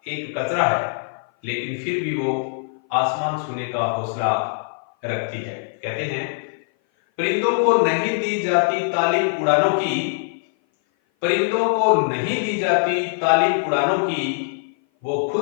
एक कचरा है, लेकिन फिर भी वो आसमान छूने का हौसला रखती है। कहते हैं, परिंदों को नहीं दी जाती तालीम उड़ानों की, परिंदों को नहीं दी जाती तालीम उड़ानों की, वो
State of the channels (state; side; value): silent; right; 57 dB below the other